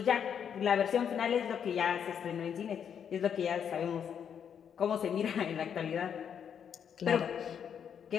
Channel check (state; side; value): quieter; right; 8.0 dB